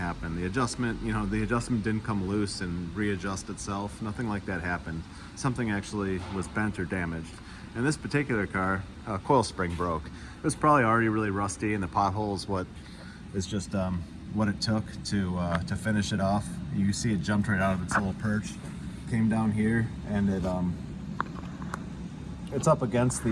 The adjustment, you know, the adjustment didn't come loose and readjust itself. Nothing like that happened. Something actually was bent or damaged. In this particular car, a coil spring broke. It was probably already really rusty, and the pothole is what is just what it took to finish it off. You see it jumped right out of its little perch, came down here, and it's up against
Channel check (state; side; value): identical; both; correlation 1.00